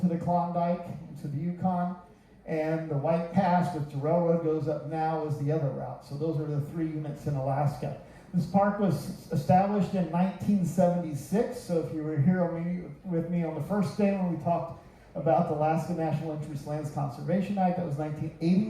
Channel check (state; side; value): identical; both; correlation 1.00